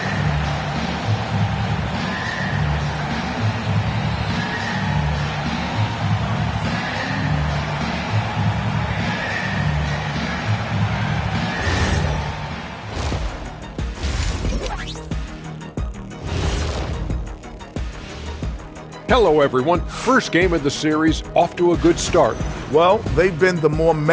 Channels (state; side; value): identical; both; correlation 1.00